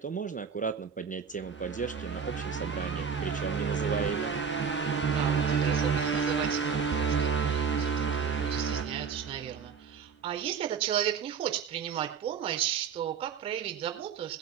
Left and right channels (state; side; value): quieter; left; 6.5 dB